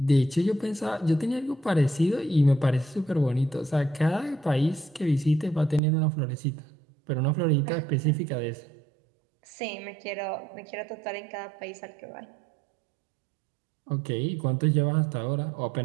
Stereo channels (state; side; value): drops out; left; at 5.8 s